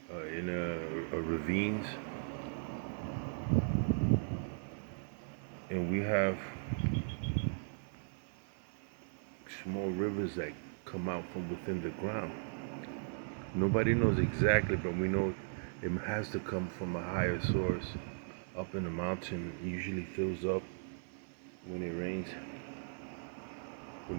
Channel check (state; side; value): silent; left; 53 dB below the other